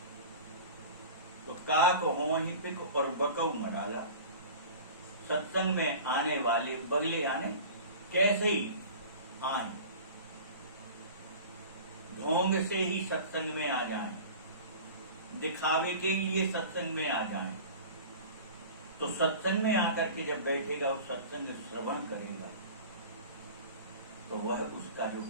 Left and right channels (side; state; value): both; inverted; correlation -0.38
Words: तो काक हो ही पिक और बकऊ मराला। सत्संग में आने वाले बगले आने कैसे ही आए, ढोंग से ही सत्संग में आ जाएं, दिखावे के लिए सत्संग में आ जाएं। तो सत्संग में आकर के जब बैठेगा वो सत्संग श्रवण करेगा तो वह उसका जो